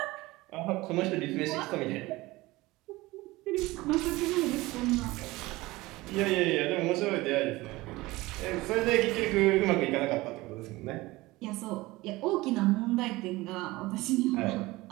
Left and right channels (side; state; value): left; quieter; 20.1 dB